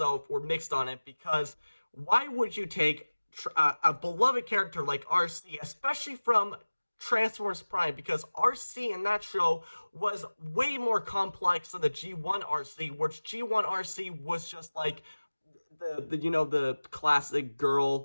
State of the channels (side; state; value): both; inverted; correlation -1.00